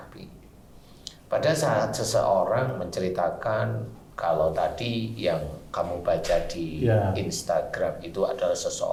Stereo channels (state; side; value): identical; both; correlation 1.00